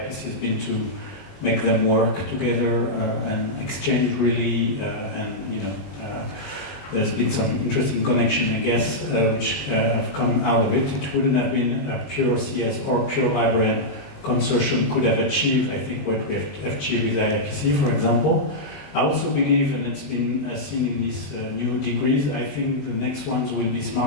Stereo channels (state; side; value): late; right; 20 ms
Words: has been to make them work together and exchange really, there's been some interesting connection, I guess, which have come out of it. It wouldn't have been a pure CS or pure librarian consortium could have achieved, I think, what we have achieved with IIPC, for example. I also believe, and it's been seen in these new degrees, I think the next ones will be